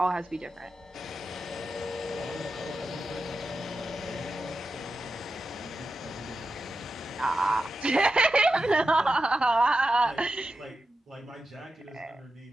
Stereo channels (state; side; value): normal; both; correlation 0.90